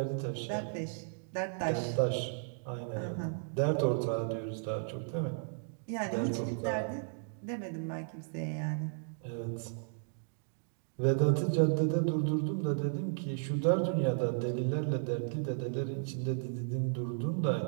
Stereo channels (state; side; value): silent; left; digital silence